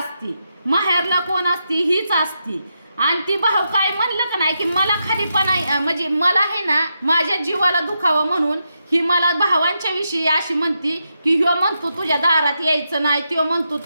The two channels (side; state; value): both; inverted; correlation -0.84